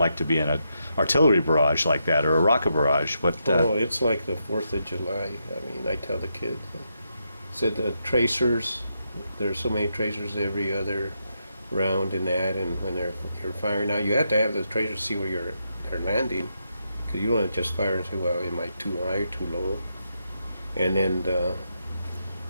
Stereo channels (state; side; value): inverted; both; correlation -0.82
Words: to be in an artillery barrage like that, or a rocket barrage. It's like the 4th of July. I mean, I tell the kids, said the tracers, there's so many tracers every other round in that, and when you're firing out, you have to have the tracers see where they're landing, because you don't want to just fire and say, well, am I too high, too low? And then